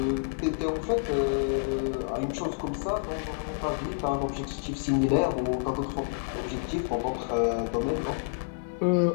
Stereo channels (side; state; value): right; silent; digital silence